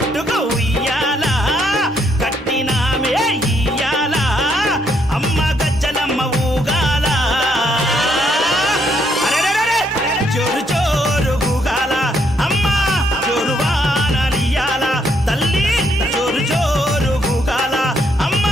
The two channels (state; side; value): normal; both; correlation 0.73